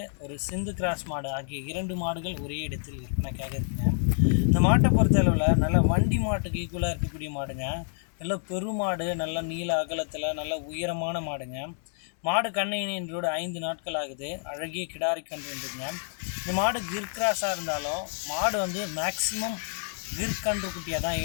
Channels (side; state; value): right; silent; digital silence